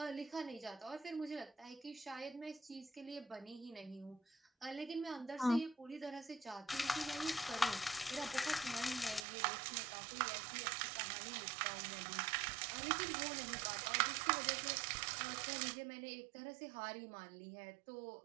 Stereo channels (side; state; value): left; drops out; at 9.2 s